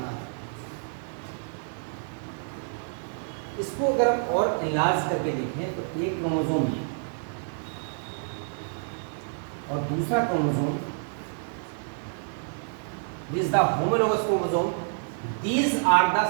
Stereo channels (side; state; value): left; silent; 59 dB below the other